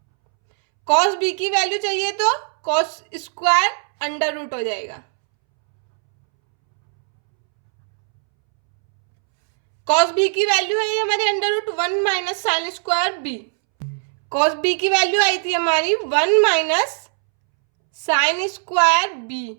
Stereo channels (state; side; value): silent; left; 66 dB below the other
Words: cos b की वैल्यू चाहिए तो cos स्क्वायर अंडर रूट हो जाएगा. cos b की वैल्यू है हमारी under root 1 minus sine square b. cos b की वैल्यू आई थी हमारी 1 minus sine square b